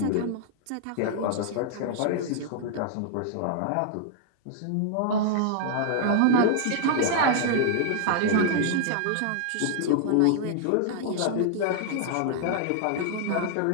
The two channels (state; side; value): different; both; correlation -0.01